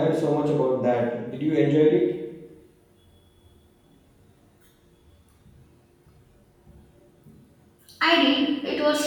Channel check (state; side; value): identical; both; correlation 1.00